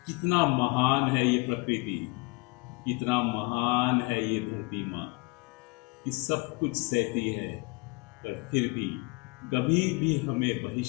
कितना महान है ये प्रकृति, कितना महान है ये धरती माँ कि सब कुछ सहती है, पर फिर भी कभी भी हमें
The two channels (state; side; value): quieter; right; 26.9 dB